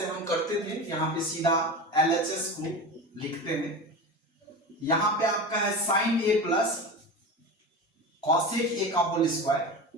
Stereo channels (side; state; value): both; normal; correlation 0.27